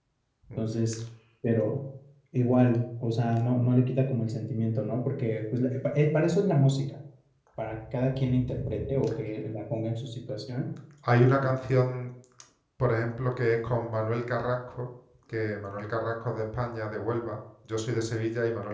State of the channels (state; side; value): identical; both; correlation 1.00